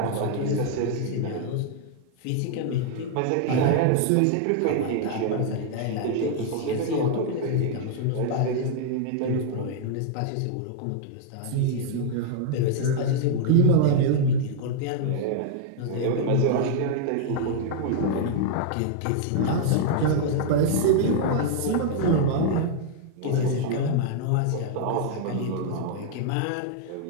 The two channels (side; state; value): both; different; correlation -0.01